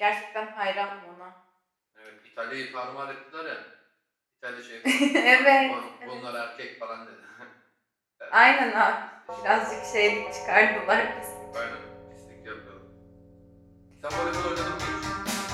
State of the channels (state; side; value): identical; both; correlation 1.00